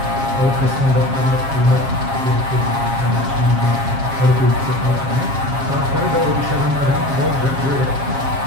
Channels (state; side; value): late; left; 7.4 ms